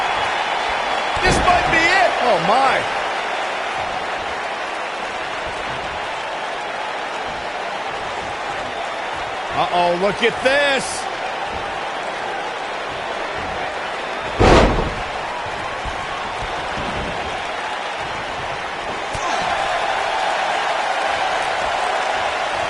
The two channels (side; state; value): both; identical; correlation 1.00